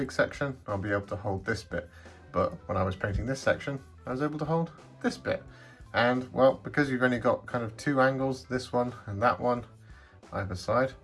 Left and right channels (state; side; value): identical; both; correlation 1.00